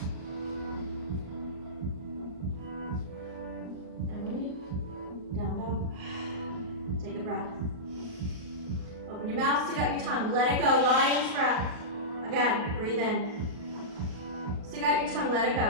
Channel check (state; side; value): late; left; 38 ms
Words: And release. Down, down. Take a breath. Open your mouth, stick out your tongue, let it go, lion's breath. Again, breathe in. Stick out your tongue, let it